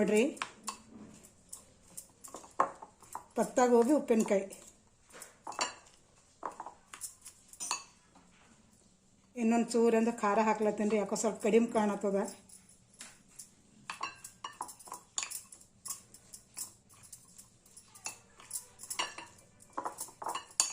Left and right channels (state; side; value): identical; both; correlation 1.00